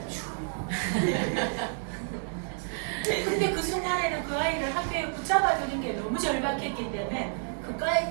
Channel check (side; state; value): left; silent; digital silence